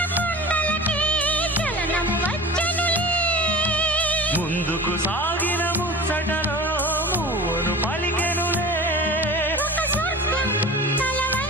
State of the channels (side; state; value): both; normal; correlation 0.35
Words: కొండలకి చలనము వచ్చనులే ముందుకు సాగిన ముచ్చటలో మూవను పలికెనులే ఒక స్వర్గం తల